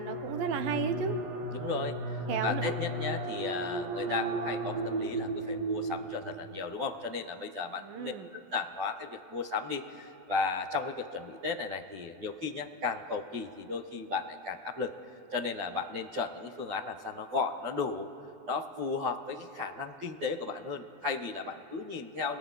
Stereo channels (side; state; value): left; late; 11 ms